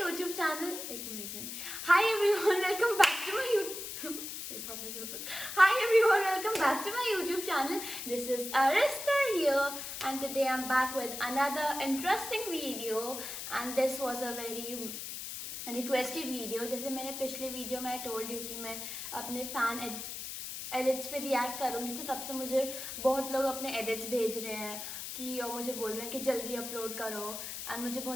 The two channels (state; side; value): noise; left; hiss, 7 dB below the sound